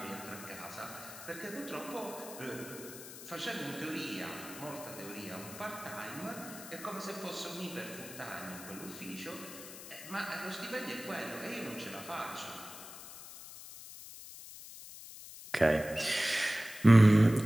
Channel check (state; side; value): noise; left; hiss, 13 dB below the sound